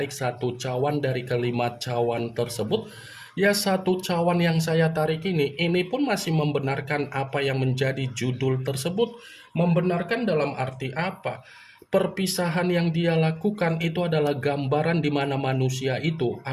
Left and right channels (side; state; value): both; identical; correlation 1.00